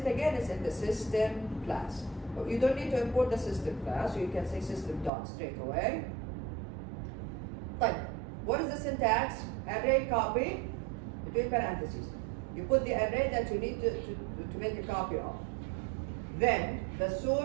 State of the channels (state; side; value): drops out; left; at 5.1 s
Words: again? It's in the system class. But you don't need to import the system class, so you can say system dot straight away. Type. What is the syntax? Array copy between parentheses. You put the array that you need to make a copy of. Then the